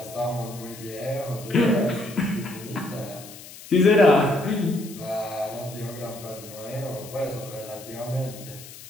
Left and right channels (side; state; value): left; noise; hiss, 16 dB below the sound